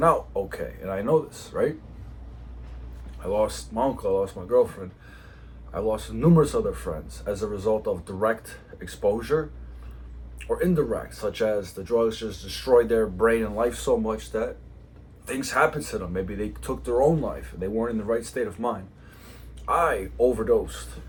out okay. And I know this, right? I lost my uncle, I lost my girlfriend, I lost numerous other friends as a result of direct exposure or indirect, such as the drugs just destroyed their brain and life so much that things happened to them. Maybe they took their own life and they weren't in the right state of mind. I overdosed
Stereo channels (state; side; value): identical; both; correlation 1.00